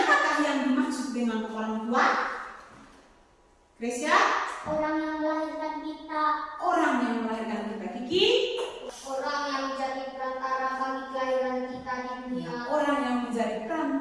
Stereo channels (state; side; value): identical; both; correlation 1.00